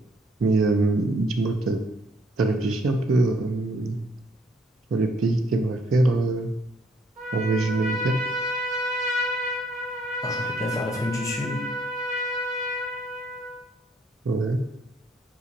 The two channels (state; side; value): normal; both; correlation 0.66